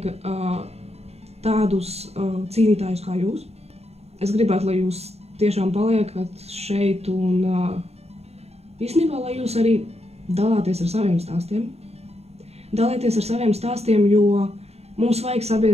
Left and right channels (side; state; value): left; late; 0.30 ms